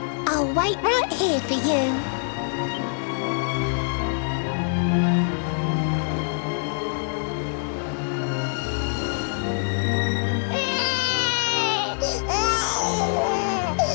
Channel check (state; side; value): silent; right; digital silence